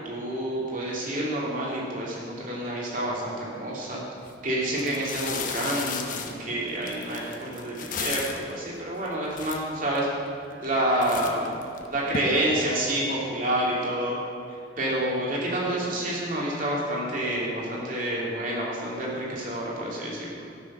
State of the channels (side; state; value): both; normal; correlation 0.15